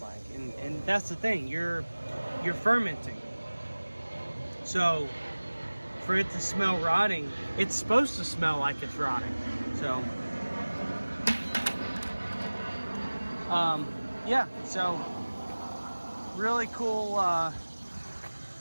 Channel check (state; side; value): inverted; both; correlation -1.00